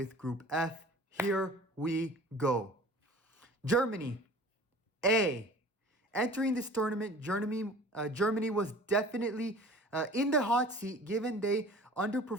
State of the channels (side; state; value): both; normal; correlation 0.44